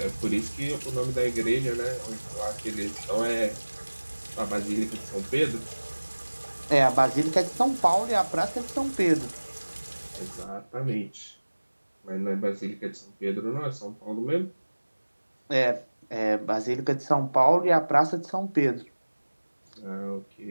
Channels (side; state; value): both; inverted; correlation -1.00